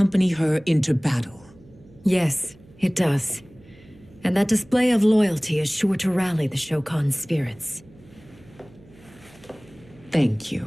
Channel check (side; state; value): right; noise; hum, 25 dB below the sound